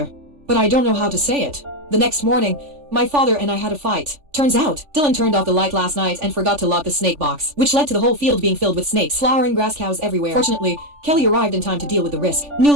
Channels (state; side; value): late; left; 3.4 ms